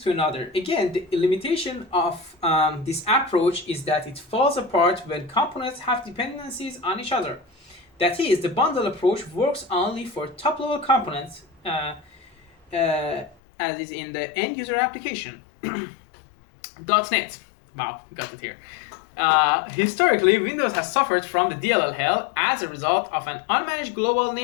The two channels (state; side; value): drops out; right; at 13.4 s